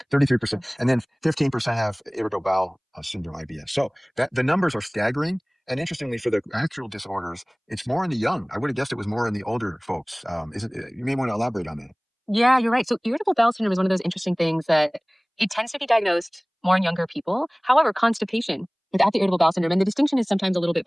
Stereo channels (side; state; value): both; identical; correlation 1.00